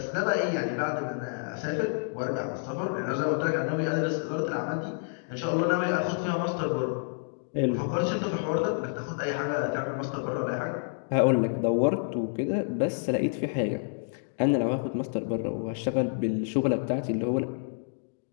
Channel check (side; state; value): right; silent; digital silence